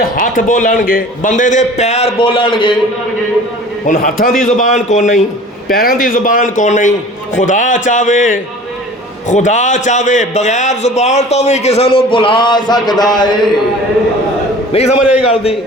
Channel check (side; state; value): both; normal; correlation 0.44